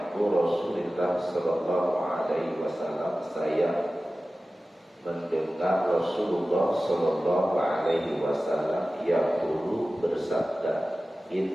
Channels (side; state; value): both; normal; correlation 0.96